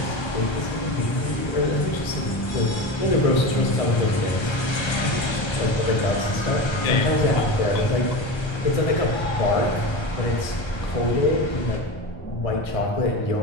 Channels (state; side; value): late; right; 1.3 ms